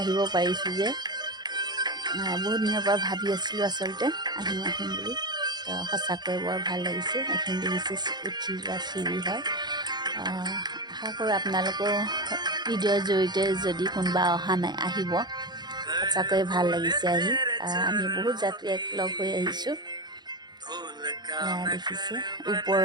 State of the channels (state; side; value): late; left; 0.21 ms